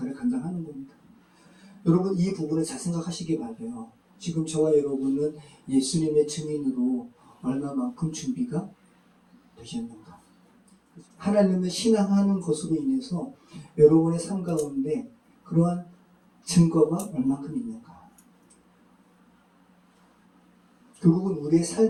감당하는 겁니다. 여러분 이 부분을 잘 생각하시기 바라요. 지금 저와 여러분은 예수님의 증인으로 얼마만큼 준비가 되셨는가? 하나님을 신앙하는 것으로 인해서 여러분의 삶 가운데 그러한 증거가 얼마큼 있는가? 결국은 우리의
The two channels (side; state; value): both; identical; correlation 1.00